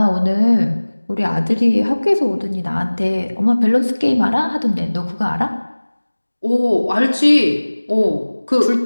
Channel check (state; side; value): inverted; both; correlation -1.00